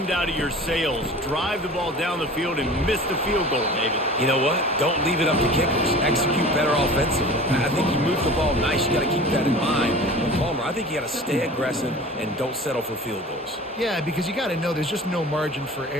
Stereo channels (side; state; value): both; normal; correlation 0.40